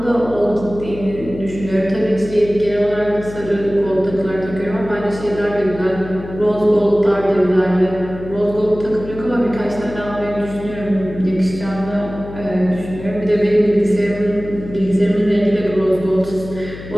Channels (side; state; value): left; noise; hum, 13 dB below the sound